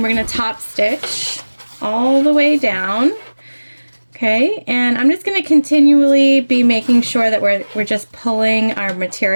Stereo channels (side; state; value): both; inverted; correlation -1.00